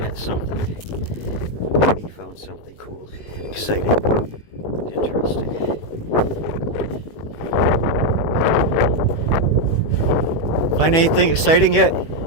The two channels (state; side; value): late; right; 18 ms